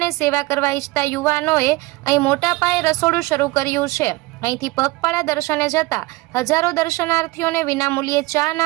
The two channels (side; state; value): left; quieter; 21.3 dB